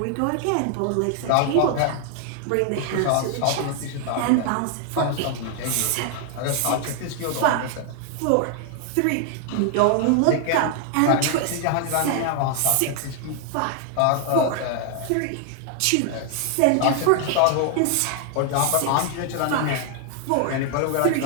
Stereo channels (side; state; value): both; different; correlation 0.00